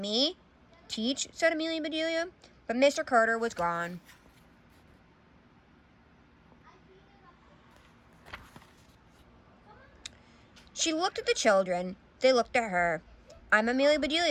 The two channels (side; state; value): both; identical; correlation 1.00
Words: Teach, said Amelia Bedelia, but Mr. Carter was gone. She looked at the children. They looked at her. I'm Amelia